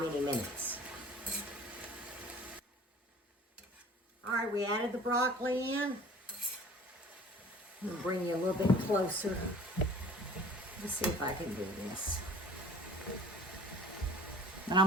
minutes. Alright, we added the broccoli in. I'm going to bring you a little bit closer. Let's see if I can do this. And I'm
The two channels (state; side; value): normal; both; correlation 0.47